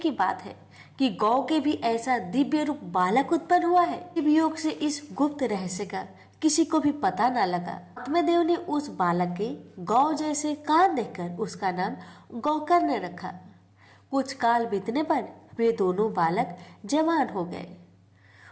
बात है कि गौ के भी ऐसा दिव्य रूप बालक उत्पन्न हुआ है। योग से इस गुप्त रहस्य का किसी को भी पता न लगा। आत्मदेव ने उस बालक के गौ जैसे कान देखकर उसका नाम गौकर्ण रखा। कुछ काल बीतने पर वे दोनों बालक जवान हो गए।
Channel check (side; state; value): both; identical; correlation 1.00